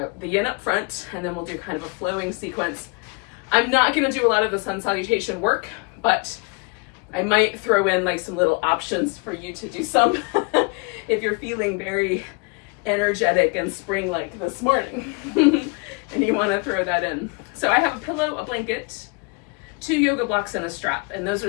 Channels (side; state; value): right; quieter; 32.1 dB